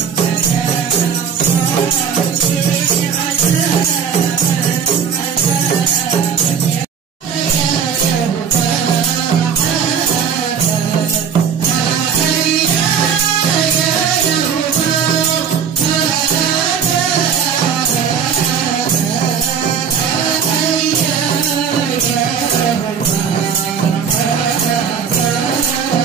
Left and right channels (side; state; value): left; quieter; 7.1 dB